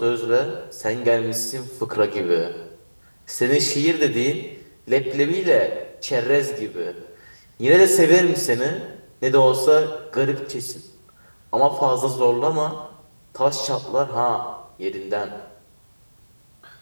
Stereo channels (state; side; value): inverted; both; correlation -1.00